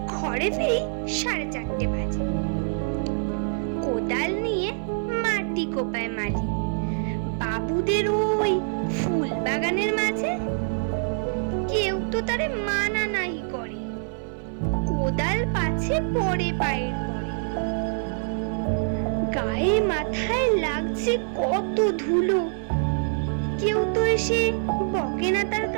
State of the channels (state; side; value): silent; left; 57 dB below the other